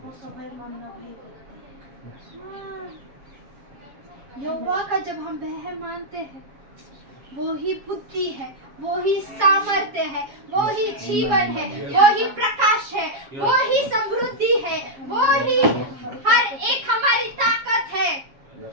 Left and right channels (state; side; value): late; left; 7.3 ms